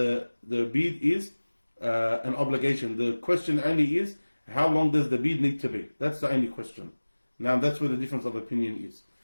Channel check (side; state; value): both; inverted; correlation -1.00